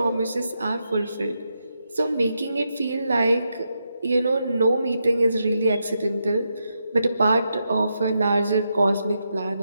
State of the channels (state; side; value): inverted; both; correlation -0.84